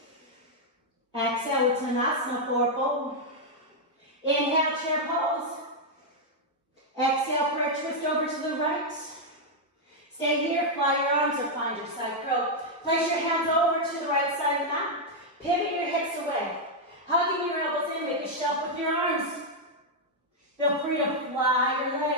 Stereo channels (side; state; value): both; normal; correlation -0.02